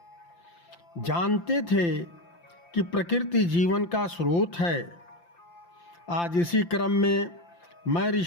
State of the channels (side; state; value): right; late; 5.8 ms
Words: जानते थे कि प्रकृति जीवन का स्रोत है। आज इसी क्रम में मैं